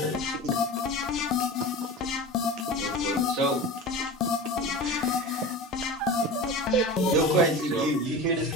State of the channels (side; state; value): both; normal; correlation 0.31